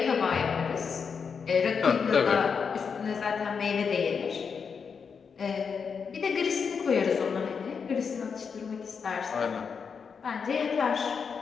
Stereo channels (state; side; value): quieter; right; 6.0 dB